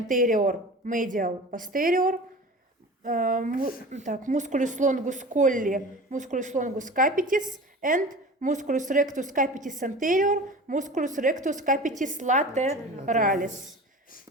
medial, posterior. Musculus longus colli, musculus longus capitis, and musculus rectus capitis anterior, musculus rectus capitis lateralis.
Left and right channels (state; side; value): normal; both; correlation 0.36